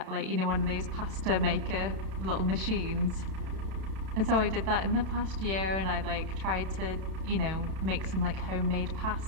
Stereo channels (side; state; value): left; late; 32 ms